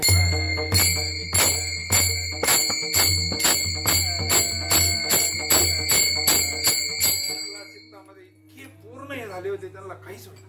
चित्तामध्ये इतके पूर्ण हे झाले होते त्यांना काहीच होत.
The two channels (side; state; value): both; identical; correlation 1.00